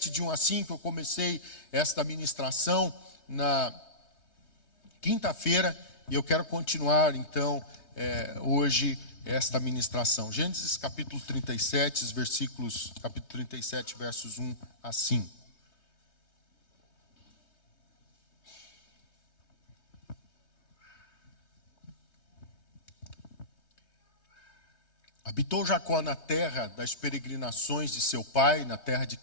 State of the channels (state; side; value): late; right; 3.2 ms